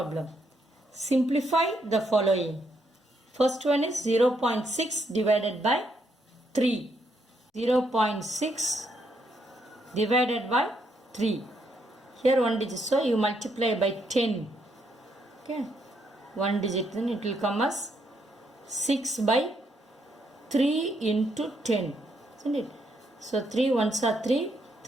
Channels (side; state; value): both; normal; correlation 0.75